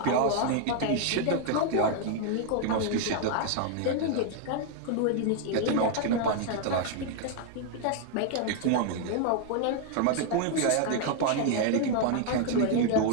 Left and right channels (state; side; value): different; both; correlation 0.00